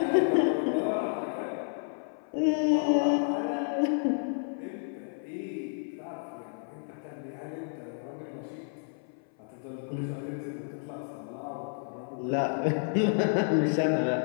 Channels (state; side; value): silent; right; 57 dB below the other